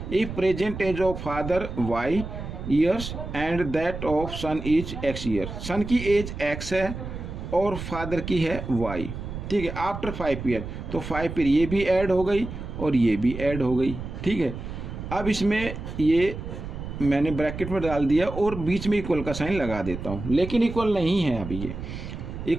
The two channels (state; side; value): noise; right; rumble, 8 dB below the sound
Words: if present age of father y years and that of son is x year। Son की एज x है और father की है y। ठीक है, after 5 years, तो 5 पर ये भी ऐड हो गई और ये भी ऐड हो गई। ठीक है, अब इसमें ये मैंने ब्रैकेट में डाल दिया और बीच में इक्वल का साइन लगा देता हूँ, लेकिन इक्वल नहीं है अभी। ये